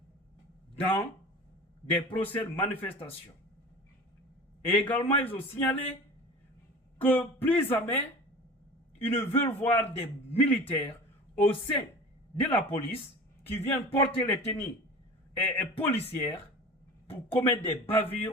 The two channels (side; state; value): both; normal; correlation 0.36